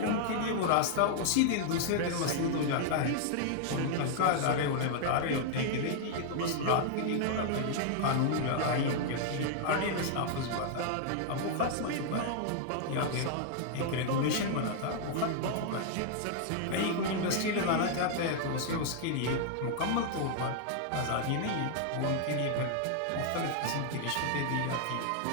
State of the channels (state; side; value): different; both; correlation -0.01